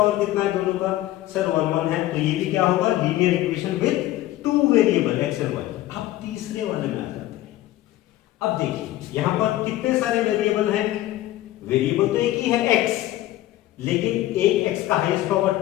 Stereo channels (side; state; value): right; quieter; 15.3 dB